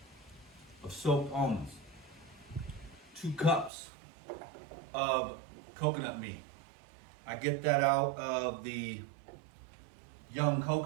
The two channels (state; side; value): drops out; left; at 3.7 s